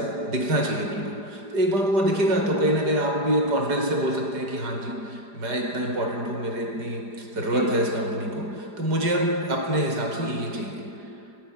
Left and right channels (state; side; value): late; left; 4.9 ms